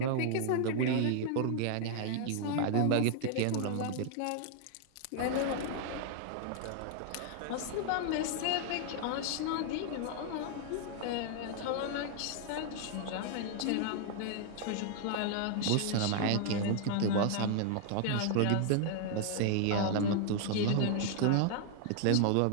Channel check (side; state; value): both; different; correlation 0.00